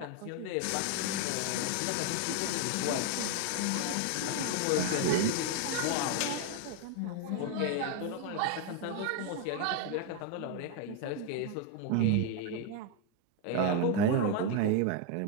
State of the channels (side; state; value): both; different; correlation 0.01